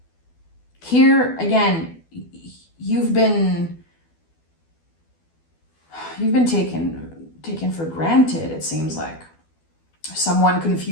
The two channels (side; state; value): right; late; 12 ms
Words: Here, again, you've been taken for granted, it seems like. Someone